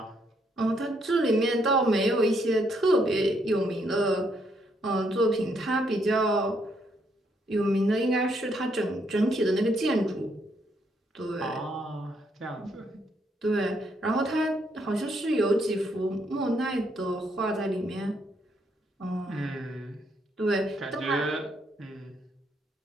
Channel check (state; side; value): normal; both; correlation 0.73